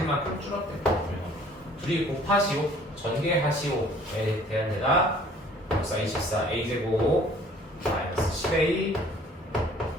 줄었대. 둘이 곱하시오, 전개하시오에 대한 데다 6, 24 a제곱 마이너스 10a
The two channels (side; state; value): both; normal; correlation 0.55